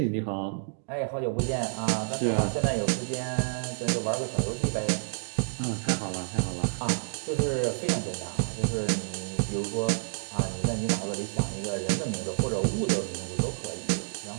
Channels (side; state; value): left; silent; digital silence